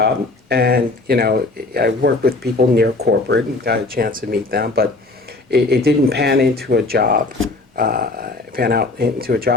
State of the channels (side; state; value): right; quieter; 3.2 dB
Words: and, I worked with people near corporate and got a chance to meet them, but it didn't pan out into a job